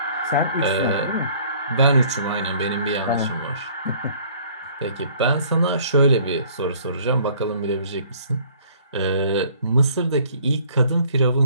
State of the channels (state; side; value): inverted; both; correlation -0.56